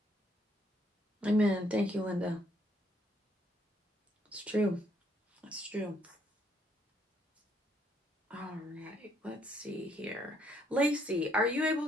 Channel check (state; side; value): normal; both; correlation 0.69